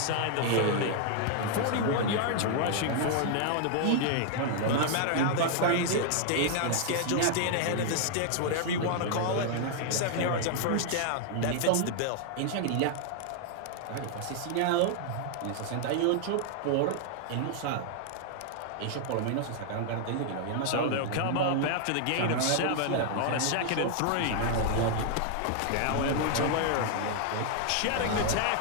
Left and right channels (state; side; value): different; both; correlation 0.00